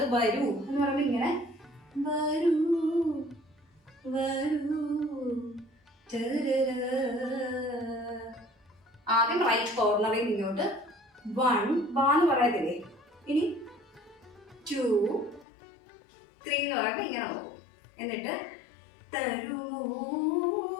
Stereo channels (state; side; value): drops out; right; at 15.5 s